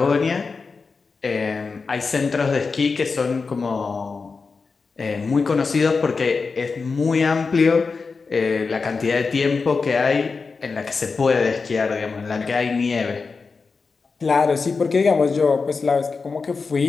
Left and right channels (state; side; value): quieter; right; 4.6 dB